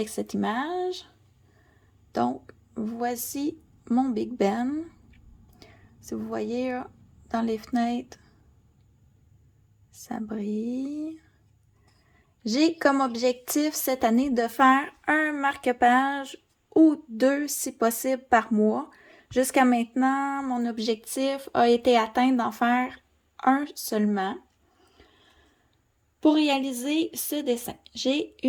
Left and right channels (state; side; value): identical; both; correlation 1.00